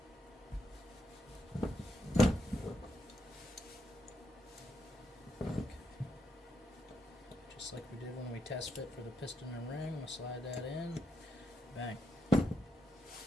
Just like we did when we test fit for the piston and ring, we'll slide that in. Bang.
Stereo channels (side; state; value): both; normal; correlation 0.80